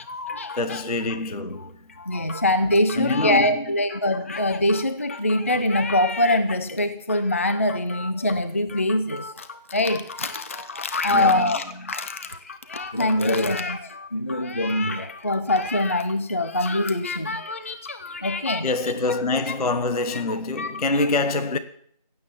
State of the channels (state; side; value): inverted; both; correlation -0.42